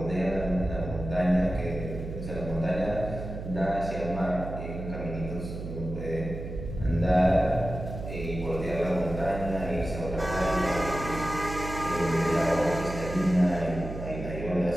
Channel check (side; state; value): right; noise; hum, 8 dB below the sound